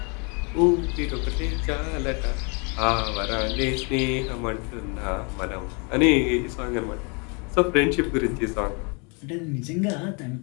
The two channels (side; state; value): right; quieter; 34.0 dB